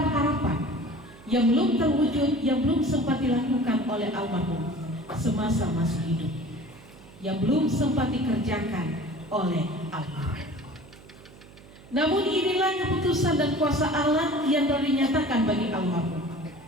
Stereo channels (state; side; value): noise; right; hum, 22 dB below the sound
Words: yang belum terwujud, yang belum sempat dilakukan oleh almarhum semasa masih hidup, yang belum sempat dikerjakan oleh almarhum. Namun inilah keputusan dan kuasa Allah yang telah dinyatakan bagi almarhum